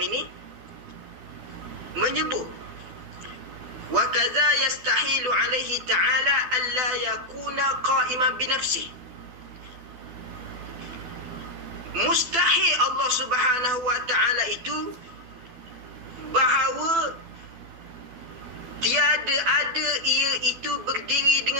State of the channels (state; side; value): late; left; 12 ms